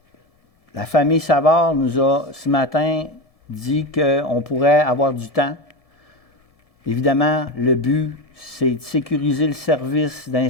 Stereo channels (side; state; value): right; late; 1.7 ms